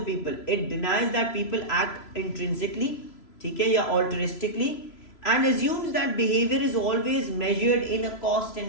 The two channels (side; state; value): right; late; 3.0 ms